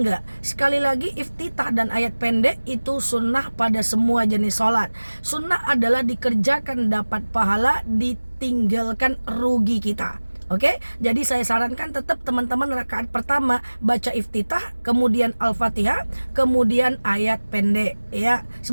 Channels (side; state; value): both; inverted; correlation -1.00